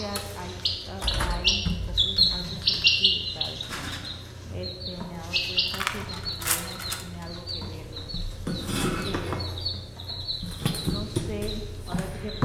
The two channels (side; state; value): both; identical; correlation 1.00